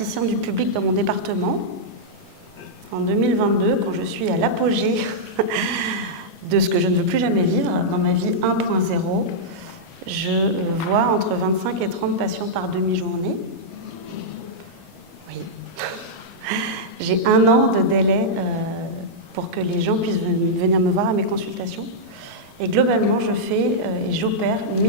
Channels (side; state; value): left; late; 1.4 ms